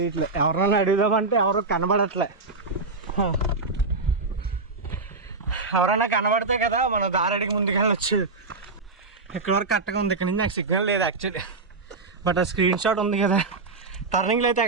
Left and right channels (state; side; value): quieter; left; 3.8 dB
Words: ఎవరైనా అడుగుదామంటే ఎవరు కనబడట్లే. ఎవరైనా కనబడితే కదా మనం దారెడికి ముందుకు వెళ్ళొచ్చు. ఇక్కడ వరకు కరెక్ట్గా ఉంది, ఇక్కడ నుంచి నాకు సిగ్నల్ లేదు యాక్చువల్లీ. బట్ ఆ స్క్రీన్ షాట్ ఉంది కదా, టర్నింగ్లో అయితే